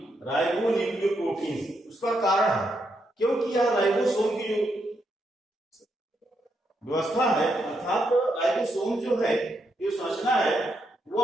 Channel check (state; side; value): normal; both; correlation 0.80